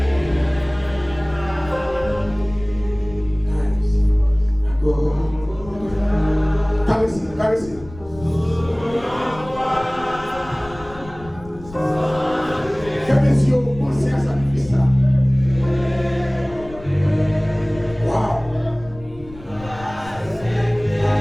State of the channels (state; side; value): noise; left; rumble, 17 dB below the sound